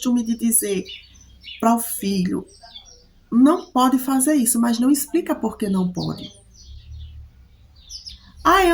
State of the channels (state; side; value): identical; both; correlation 1.00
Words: de dizer para o filho: não pode fazer isso, mas não explica por que não pode. Ah,